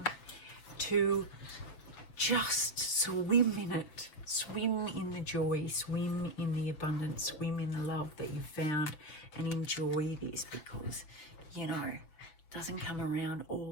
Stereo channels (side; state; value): right; late; 6.8 ms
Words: to just swim in it. Swim in the joy, swim in the abundance, swim in the love that you've found, and enjoy this, because, you know, it doesn't come around